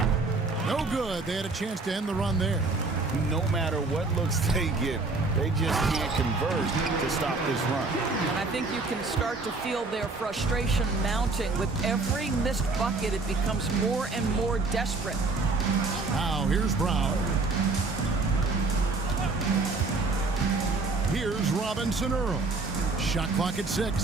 No good. They had a chance to end the run there. No matter what looks they get, they just can't convert to stop this run. And I think you can start to feel their frustration mounting. With every missed bucket, it becomes more and more desperate. Now here's Brown. Here's Robinson Earl. Shot clock at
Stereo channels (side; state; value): left; quieter; 3.6 dB